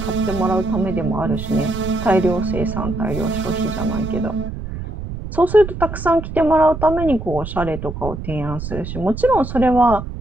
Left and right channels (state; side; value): noise; right; rumble, 8 dB below the sound